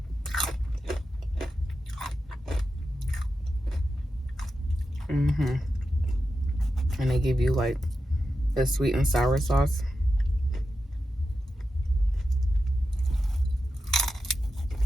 and they give you like the sweet and sour sauce.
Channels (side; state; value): both; normal; correlation 0.90